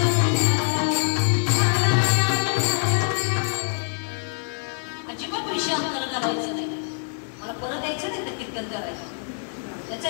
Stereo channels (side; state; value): right; silent; 62 dB below the other